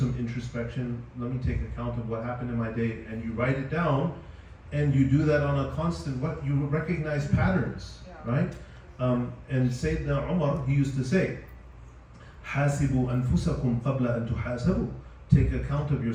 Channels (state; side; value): identical; both; correlation 1.00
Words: introspection. Let me take account of what happened in my day, and you write it down. and you do that on a constant, you recognize patterns, Yeah. right? And Sayyidina Umar, he used to say, حاسبوا أنفسكم قبل أن تحاسبوا. Take account of